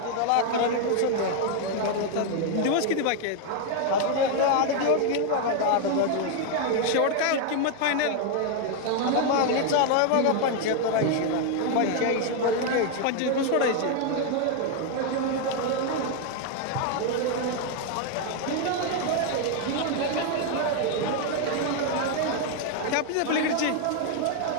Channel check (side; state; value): both; different; correlation 0.01